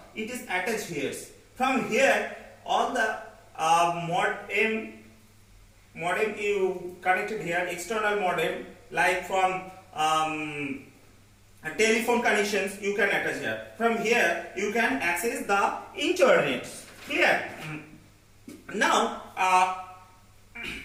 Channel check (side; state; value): both; identical; correlation 1.00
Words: It is attached here. From here, all the modem you connected here, external modem, like from telephone connections you can attach here. From here you can access the internet. Clear? Now